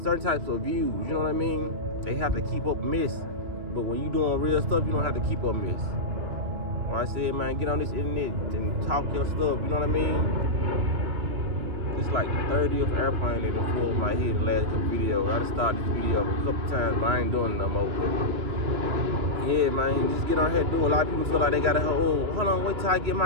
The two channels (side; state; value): left; late; 2.9 ms